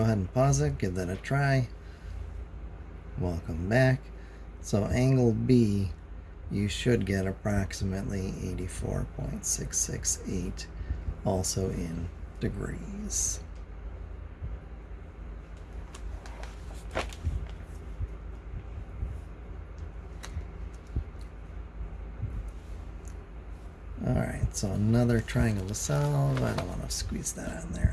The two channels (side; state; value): both; identical; correlation 1.00